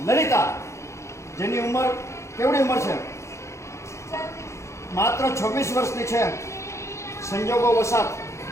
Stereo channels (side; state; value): right; late; 0.14 ms